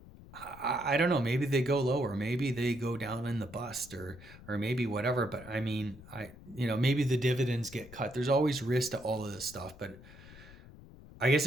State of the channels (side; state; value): left; noise; rumble, 19 dB below the sound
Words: I don't know. Maybe they go lower. Maybe they go down in the bust, or maybe whatever. But I mean, maybe the dividends get cut. There's always risk to all of this stuff. But I guess